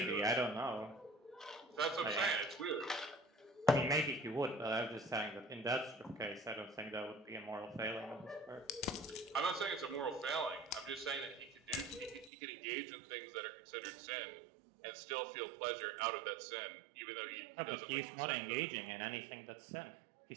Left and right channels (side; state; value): left; drops out; at 12.3 s